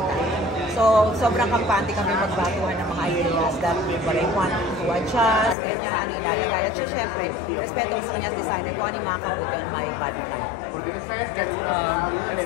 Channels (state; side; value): drops out; right; at 5.6 s